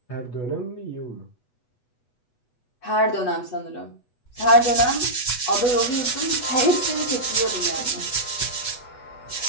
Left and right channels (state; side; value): late; right; 8.1 ms